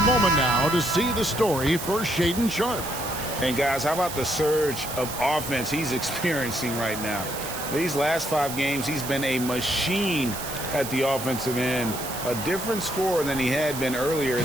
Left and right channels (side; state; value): right; noise; hiss, 8 dB below the sound